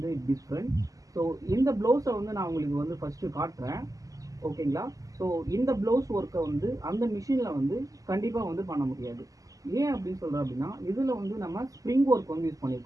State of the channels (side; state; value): left; late; 0.17 ms